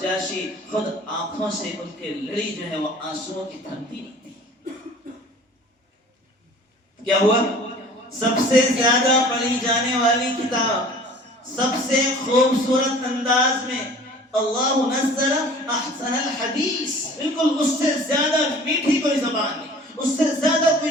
خود آنکھوں سے ان کے لڑی جو ہے وہ آنسوؤں کی تھمتی نہیں تھی۔ کیا ہوا؟ سب سے زیادہ پڑھی جانے والی کتاب، سب سے خوبصورت انداز میں، اللہ نزل احسن الحدیث، بالکل اس سے زیادہ میٹھی کوئی زبان نہیں، اس سے زیادہ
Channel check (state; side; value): normal; both; correlation 0.47